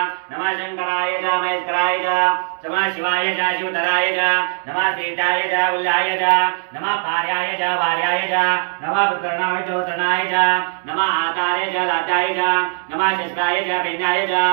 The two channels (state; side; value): silent; left; 66 dB below the other